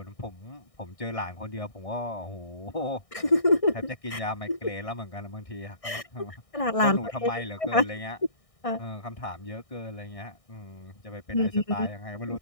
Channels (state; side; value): late; right; 1.6 ms